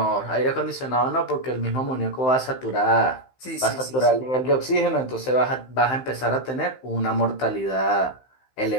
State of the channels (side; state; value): right; late; 15 ms